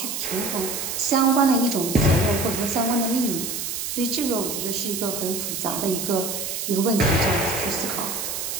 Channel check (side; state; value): right; noise; hiss, 4 dB below the sound